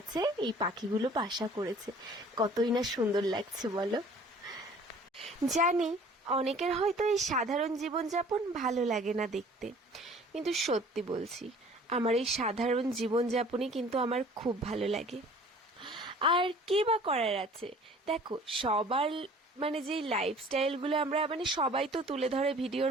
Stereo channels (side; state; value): both; normal; correlation 0.50